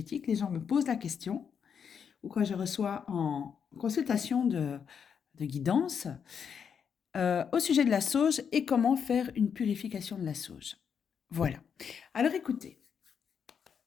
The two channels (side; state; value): right; quieter; 7.1 dB